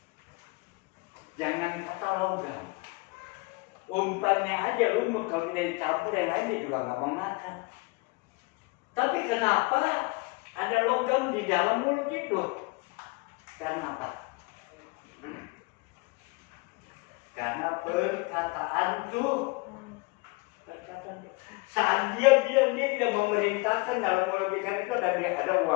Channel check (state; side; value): quieter; right; 27.2 dB